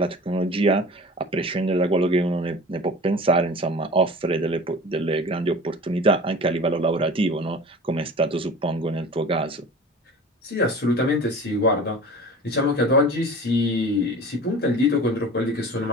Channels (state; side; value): normal; both; correlation 0.39